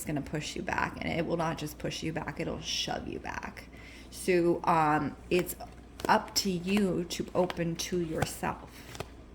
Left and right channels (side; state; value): both; identical; correlation 1.00